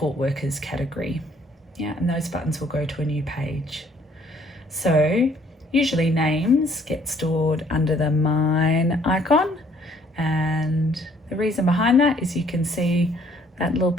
workers category. Yeah, and those buttons will go to a new page. So usually names get stored under the mine icon, and the reason behind that is you can see that little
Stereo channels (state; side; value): normal; both; correlation 0.62